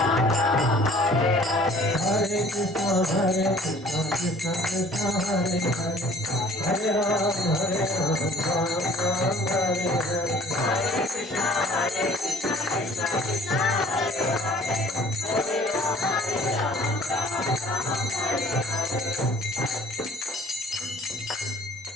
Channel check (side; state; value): both; normal; correlation 0.53